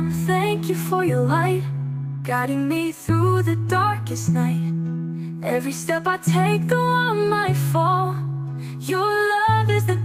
thank you for your light, guiding me through the darkest night. Every step I take, though I might fall, your love is the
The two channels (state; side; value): identical; both; correlation 1.00